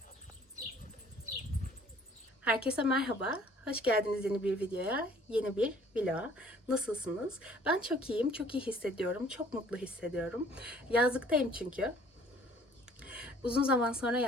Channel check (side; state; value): both; normal; correlation 0.56